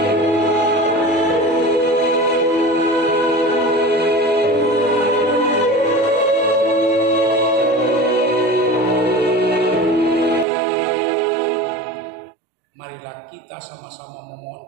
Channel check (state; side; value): drops out; left; at 10.5 s